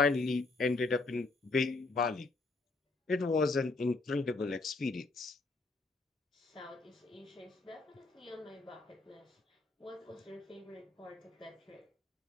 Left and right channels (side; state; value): right; quieter; 3.5 dB